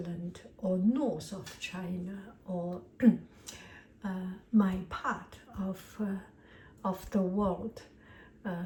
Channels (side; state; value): both; identical; correlation 1.00